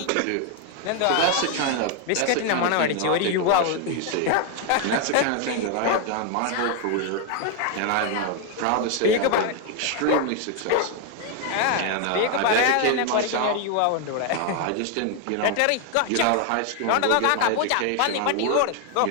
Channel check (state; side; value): different; both; correlation 0.01